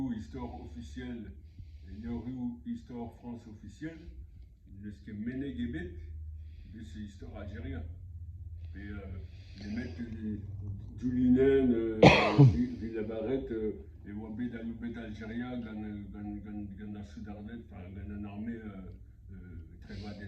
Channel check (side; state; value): both; identical; correlation 1.00